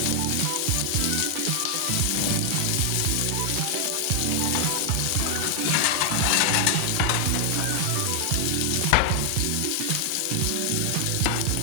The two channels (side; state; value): both; different; correlation 0.00